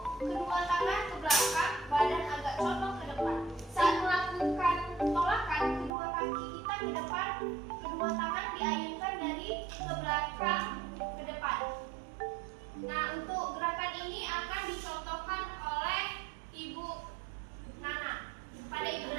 kedua tangan ke belakang, badan agak condong ke depan. Saat melakukan tolakan, kedua kaki kita ke depan, kedua tangan diayunkan dari ke belakang ke depan. Nah, untuk gerakan ini akan dicontohkan oleh Ibu Nana. Pada Ibu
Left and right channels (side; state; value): left; drops out; at 5.9 s